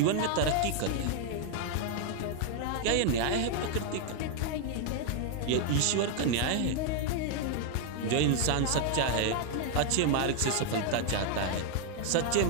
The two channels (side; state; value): both; different; correlation 0.00